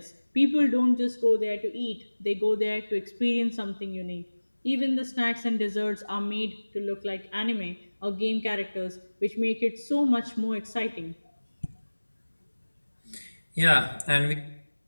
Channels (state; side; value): inverted; both; correlation -1.00